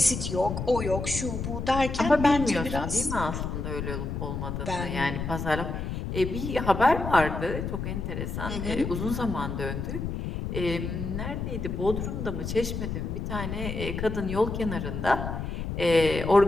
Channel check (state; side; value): noise; left; rumble, 4 dB below the sound